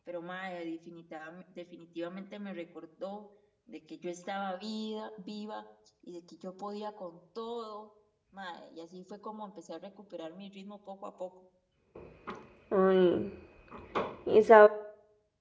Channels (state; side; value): identical; both; correlation 1.00